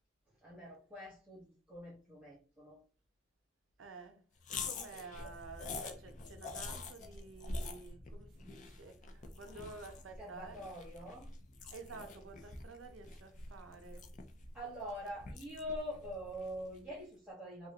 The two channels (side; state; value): both; normal; correlation 0.39